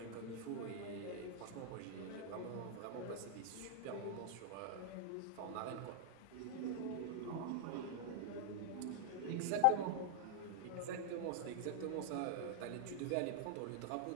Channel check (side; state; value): both; different; correlation -0.01